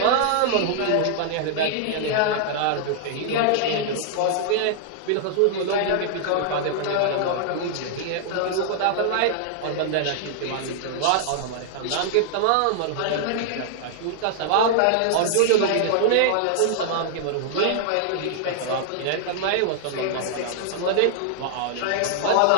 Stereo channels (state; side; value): different; both; correlation -0.01